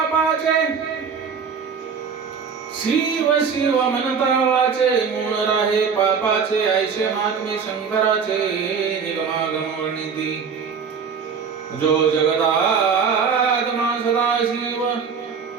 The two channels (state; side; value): quieter; left; 6.1 dB